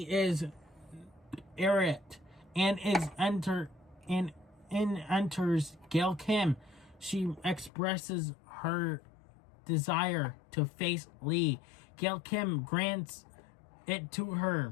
is irate and enters Gail Kim. She expresses her desire to face Lee. Gail Kim grants it to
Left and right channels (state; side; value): drops out; right; at 7.7 s